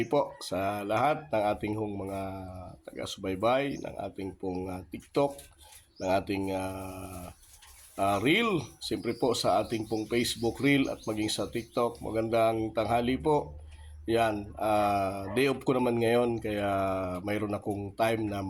po sa lahat ng ating hong mga taga-subaybay, ng ating pong TikTok, ng ating Reel, siyempre po sa ating pong Facebook Reel at maging sa TikTok. Magandang tanghali po. Yan, day off ko naman ngayon kaya mayroon akong time na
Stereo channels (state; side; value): identical; both; correlation 1.00